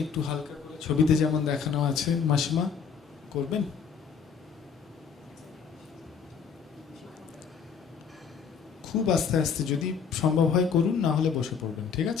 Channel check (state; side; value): quieter; right; 6.5 dB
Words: একটু হালকা করে ছবিতে যেমন দেখানো আছে মাসিমা করবেন। খুব আস্তে আস্তে যদি সম্ভব হয় করুন, না হলে বসে পড়বেন, ঠিক